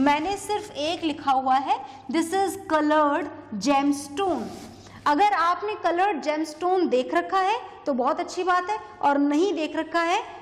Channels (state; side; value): identical; both; correlation 1.00